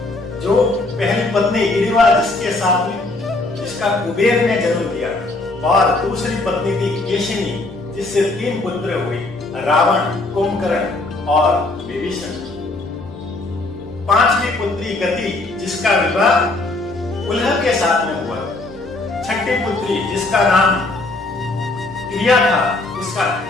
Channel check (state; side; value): quieter; right; 3.0 dB